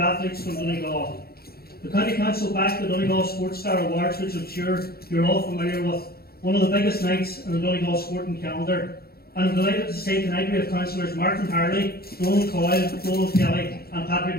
athletes from Donegal. The County Council backed the Donegal Sports Star Awards, which I'm sure you're all familiar with, one of the biggest nights in the Donegal sporting calendar. And I'm delighted to say tonight we have councillors Martin Harley, Donald Coyle, Donald Kelly and Patrick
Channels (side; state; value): right; late; 0.45 ms